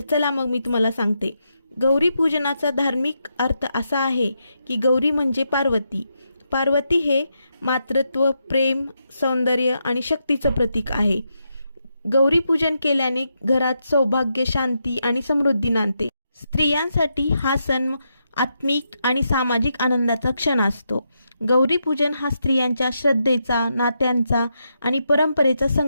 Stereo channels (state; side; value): inverted; both; correlation -0.83